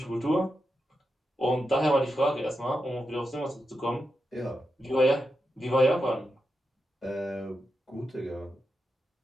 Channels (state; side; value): normal; both; correlation 0.88